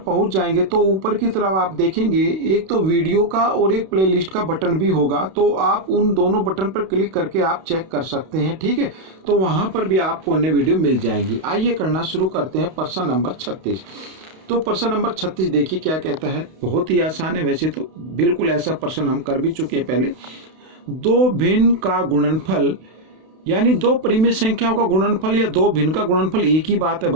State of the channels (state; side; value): late; left; 32 ms